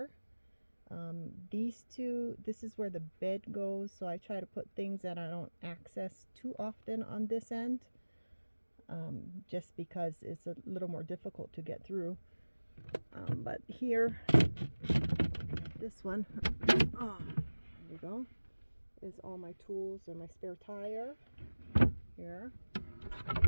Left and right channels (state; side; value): inverted; both; correlation -1.00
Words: These two, this is where the bed goes, so I try to put things that I don't access too often on this end. Just because it's a little more difficult to get through. But here, this one, there you go, is all my tools and my spare tire here.